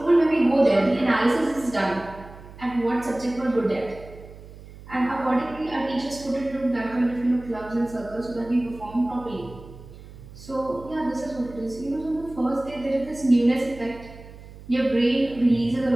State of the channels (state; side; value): noise; right; hum, 18 dB below the sound